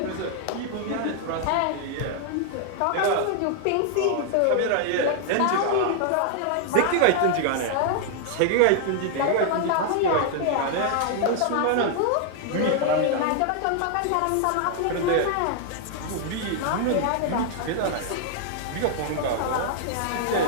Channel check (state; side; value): different; both; correlation 0.00